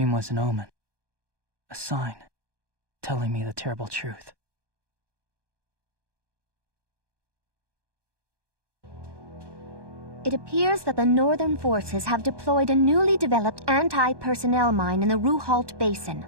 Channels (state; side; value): late; left; 1.2 ms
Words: was an omen. A sign, telling me the terrible truth. It appears that the Northern forces have deployed a newly developed anti-personnel mine in the Ruhalt Basin.